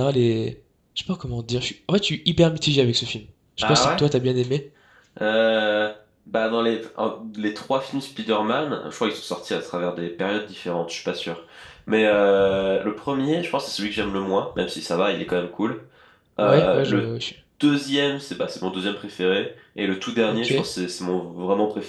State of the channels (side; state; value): both; identical; correlation 1.00